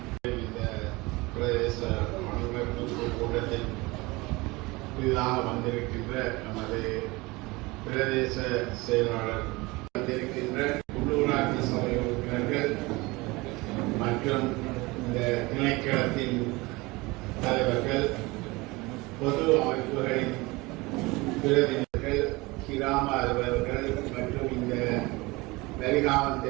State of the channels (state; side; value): quieter; left; 23.1 dB